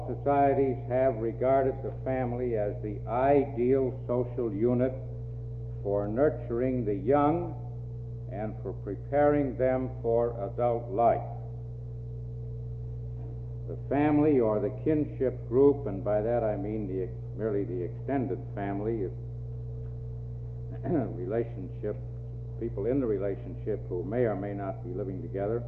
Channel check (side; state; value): both; identical; correlation 1.00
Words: societies have regarded the family as the ideal social unit for nurturing the young and for preparing them for adult life. The family or the kinship group, and by that I mean merely the extended family, relationship, people in the relationship who may or may not be living together